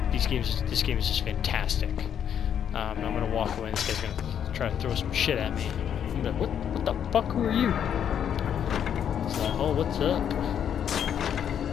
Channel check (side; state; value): right; quieter; 8.9 dB